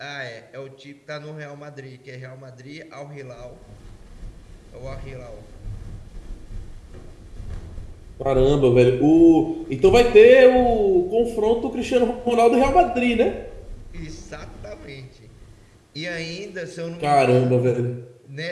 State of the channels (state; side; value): identical; both; correlation 1.00